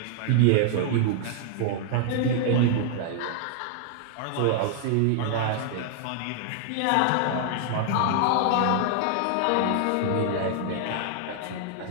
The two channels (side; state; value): both; different; correlation 0.00